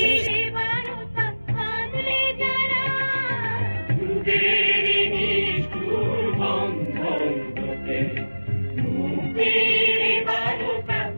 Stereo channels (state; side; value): inverted; both; correlation -1.00